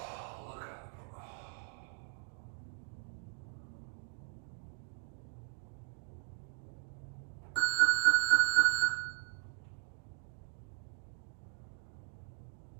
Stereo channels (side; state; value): left; silent; 52 dB below the other